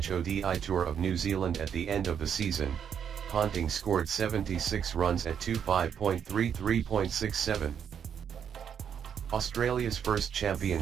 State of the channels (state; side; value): quieter; left; 8.1 dB